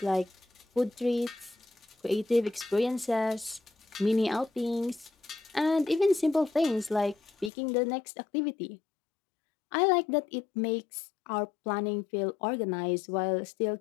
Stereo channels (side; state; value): right; drops out; at 7.5 s